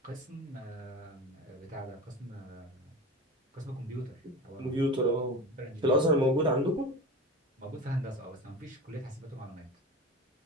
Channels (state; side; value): normal; both; correlation 0.30